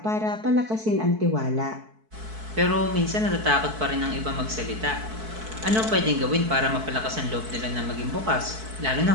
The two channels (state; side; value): late; left; 4.6 ms